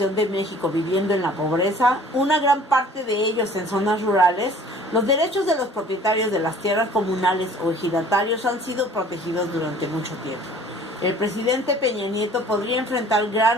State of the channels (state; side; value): normal; both; correlation 0.51